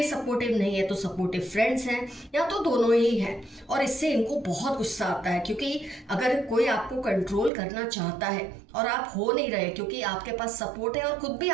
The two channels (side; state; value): left; drops out; at 7.5 s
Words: सपोर्टिव नहीं है तो सपोर्टिव फ्रेंड्स हैं, या तो दोनों ही हैं। और इससे इनको बहुत गुस्सा आता है क्योंकि अगर कोई आपको कंट्रोल करना चाहता है और आप हो नहीं रहे क्योंकि आपके पास सपोर्ट है और खुद भी